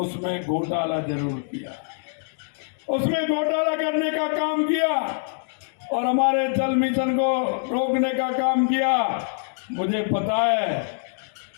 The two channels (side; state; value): right; silent; digital silence